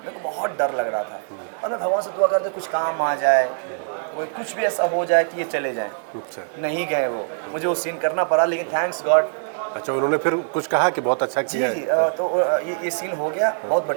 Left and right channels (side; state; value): left; silent; digital silence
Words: को बहुत डर लग रहा था और मैं भगवान से दुआ करते कुछ काम आ जाए, कोई कुछ भी ऐसा हो जाए कि ये चले जाएं। अच्छा। नहीं गए वो, मुझे वो सीन करना पड़ा, लेकिन थैंक्स गॉड। अच्छा, उन्होंने फिर कुछ कहा कि बहुत अच्छा जी किया जी है? तो ये सीन हो गया, बहुत